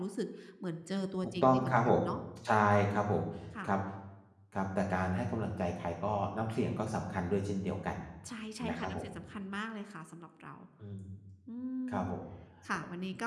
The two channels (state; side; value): identical; both; correlation 1.00